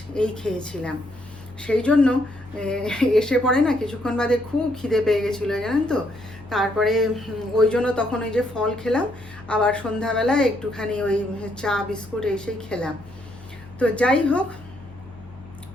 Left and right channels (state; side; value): normal; both; correlation 0.73